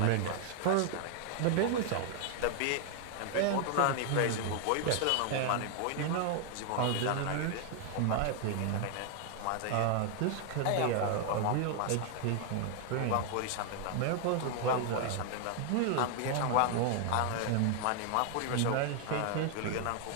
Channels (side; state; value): both; different; correlation 0.00